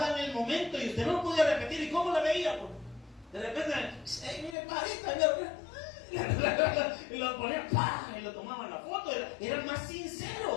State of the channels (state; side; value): drops out; right; at 4.5 s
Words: el momento y usted no lo podía repetir. ¿Y cómo la veía? De repente, mire, parita, y lo ponían, ¡pah! Y lo tomaban la foto. Era más